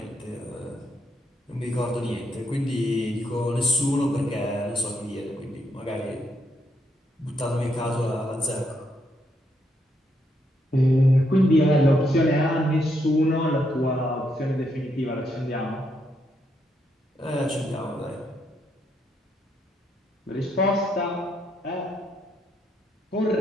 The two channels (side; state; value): both; normal; correlation 0.77